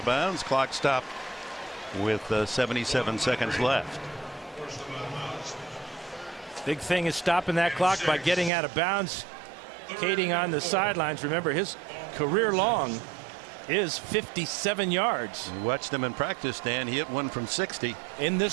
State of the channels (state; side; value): drops out; left; at 8.5 s